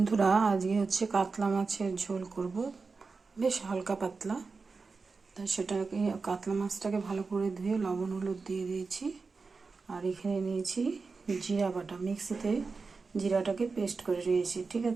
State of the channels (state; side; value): quieter; left; 4.4 dB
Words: আজকে হচ্ছে কাতলা মাছের ঝোল করব, বেশ হালকা পাতলা। তাই সেটাকে কাতলা মাছটাকে ভালো করে ধুয়ে লবণ হলুদ দিয়ে দিয়েছি। আর এখানে নিয়েছি জিরা বাটা, মিক্সিতে জিরাটাকে পেস্ট করে নিয়েছি, ঠিক